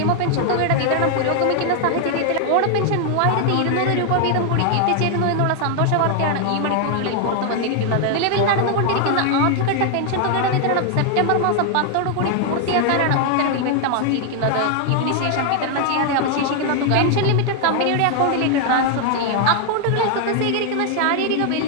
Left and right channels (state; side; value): different; both; correlation 0.00